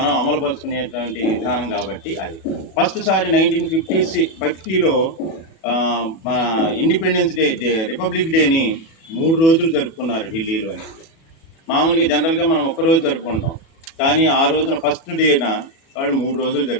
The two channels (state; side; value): late; right; 37 ms